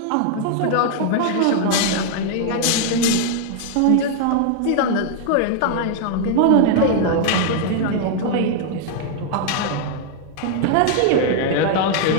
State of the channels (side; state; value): both; different; correlation 0.00